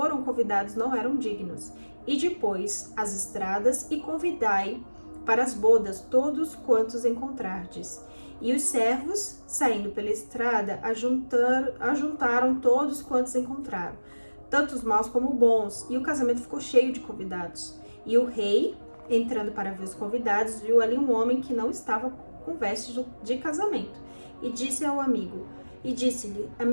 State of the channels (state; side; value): inverted; both; correlation -1.00